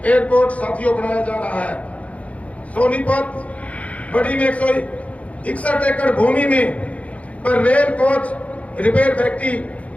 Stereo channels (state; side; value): late; right; 0.066 ms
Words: एयरपोर्ट साथियों बनाया जा रहा है। सोनीपत बड़ी में 161 एकड़ भूमि में पर रेल कोच रिपेयर फैक्ट्री